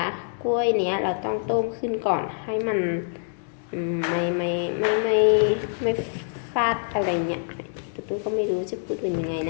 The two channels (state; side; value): silent; right; digital silence